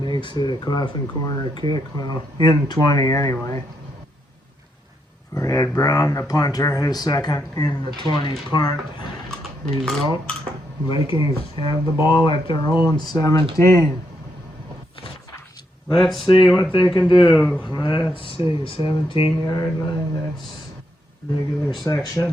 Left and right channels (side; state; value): both; normal; correlation 0.79